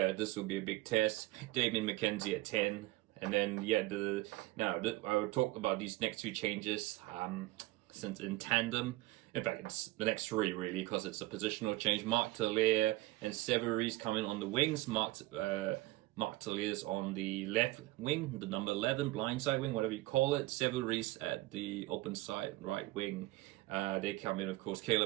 will be a big test. Damien McKenzie at 10. And then, I will talk about these next 2 changes since in tandem. In fact, it's the next 3, really, because it's a positional change. Mark Talia and Severies coming on the wings. Mark Talia's on the left wing, the number 11, blindside wing, whatever you call it. Severies at the open side, right wing. They come in, of course,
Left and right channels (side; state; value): left; quieter; 19.3 dB